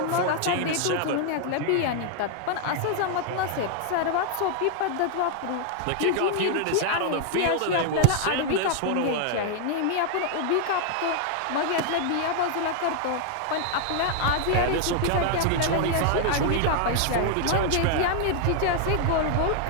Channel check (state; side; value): different; both; correlation 0.00